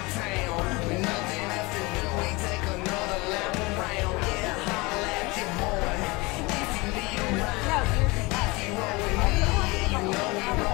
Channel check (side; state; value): right; quieter; 24.5 dB